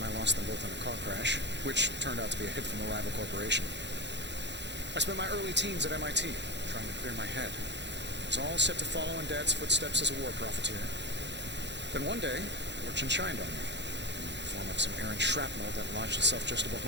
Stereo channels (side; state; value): left; late; 0.51 ms